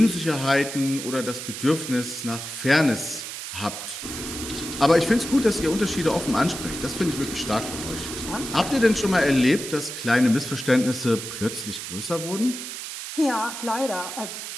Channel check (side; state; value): right; noise; hiss, 8 dB below the sound